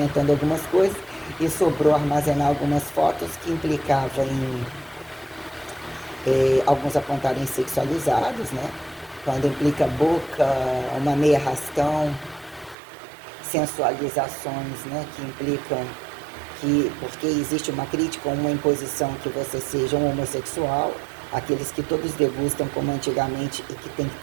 algumas coisas, e sobrou armazenar algumas fotos que implicavam em alguns apontarem sexualizados, né? Quando implica boca, uma meia arrastão, sensualizações, né? Que implicam que, porque existe uma crítica ou uma imposição que você seja um homossexual, aqueles que todos degustam como antigamente e que têm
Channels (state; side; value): drops out; left; at 12.8 s